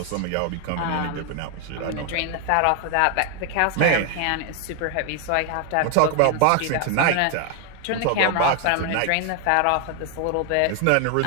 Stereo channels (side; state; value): both; different; correlation 0.01